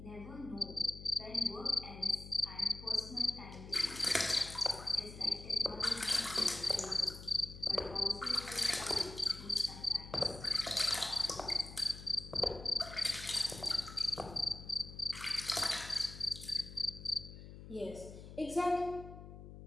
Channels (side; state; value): left; noise; hum, 13 dB below the sound